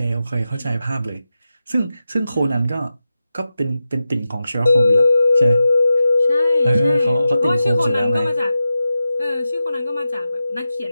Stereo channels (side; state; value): both; inverted; correlation -0.91